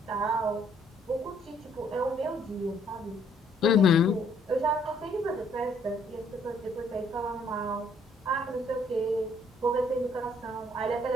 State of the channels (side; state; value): both; normal; correlation 0.65